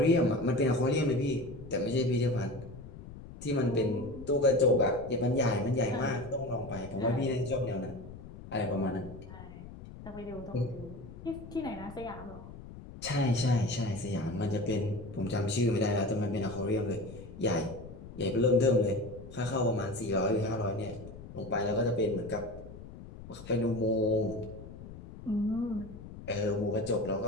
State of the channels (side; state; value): left; noise; rumble, 14 dB below the sound